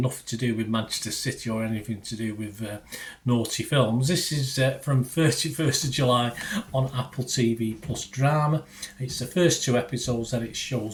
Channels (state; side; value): identical; both; correlation 1.00